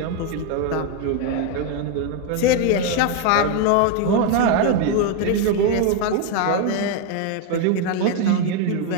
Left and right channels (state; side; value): different; both; correlation 0.01